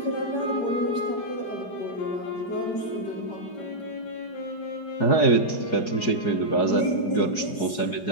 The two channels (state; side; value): late; right; 4.8 ms